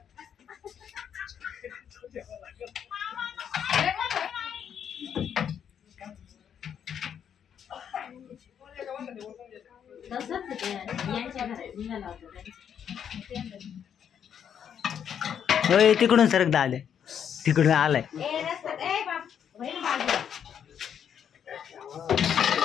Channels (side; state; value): right; quieter; 8.5 dB